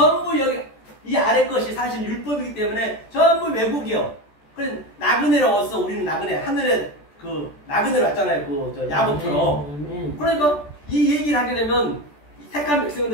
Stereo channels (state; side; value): late; right; 14 ms